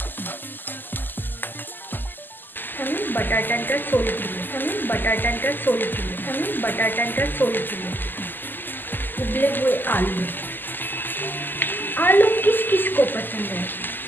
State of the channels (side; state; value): right; late; 0.091 ms